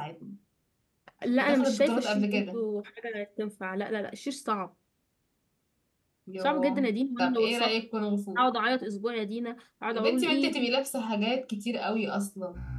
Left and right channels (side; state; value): both; identical; correlation 1.00